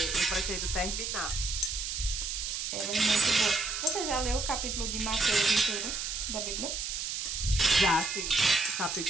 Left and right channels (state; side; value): noise; right; hiss, 3 dB below the sound